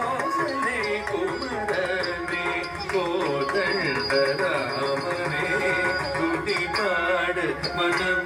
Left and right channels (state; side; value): identical; both; correlation 1.00